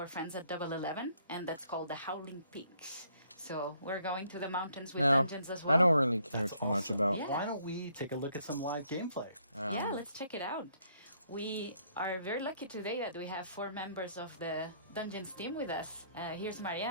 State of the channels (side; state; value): both; inverted; correlation -0.67